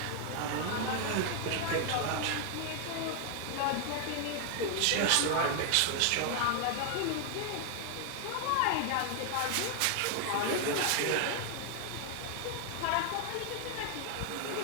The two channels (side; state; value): both; different; correlation 0.00